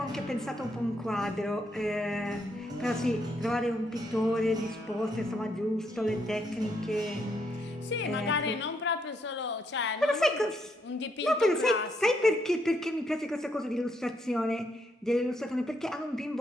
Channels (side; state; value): both; normal; correlation 0.76